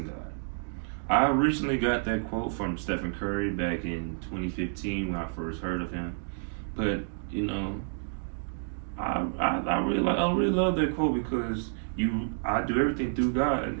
God. I originally got that quote from Stephen Curry back in 2015 when I first heard of him. But you know, I really love that quote because you I do everything through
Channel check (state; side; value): silent; left; digital silence